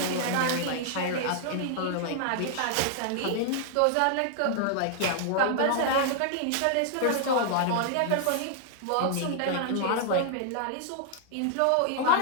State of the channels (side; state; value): both; different; correlation -0.01